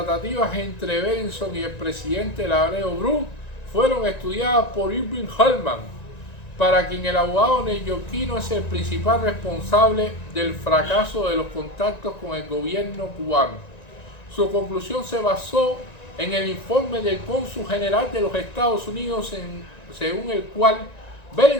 entre Berenson y el presidente Laredo Bru fueron estudiadas por Irving Hellman, para quien el abogado neoyorquino es el principal responsable del fracaso de los contactos con el gobierno cubano. Su conclusión se basó en el informe del cónsul general de los Estados Unidos, según el cual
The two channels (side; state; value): right; late; 1.9 ms